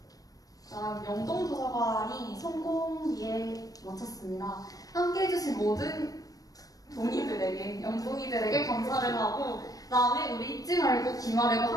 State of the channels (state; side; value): late; right; 0.18 ms